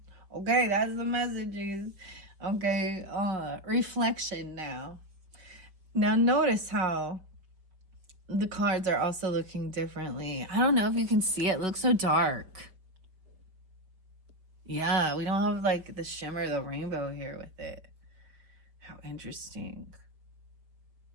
Okay, that's the messages. Okay, reflection now. Now notice how the cards are also looking differently. I don't know if you can see it. It looks so dark. Yeah, we don't have like the shimmer of the rainbow here with it. How interesting.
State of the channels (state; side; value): late; left; 5.1 ms